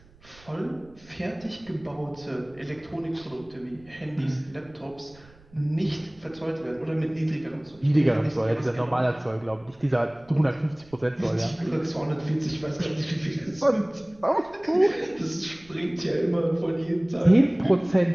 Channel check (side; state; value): right; noise; rumble, 26 dB below the sound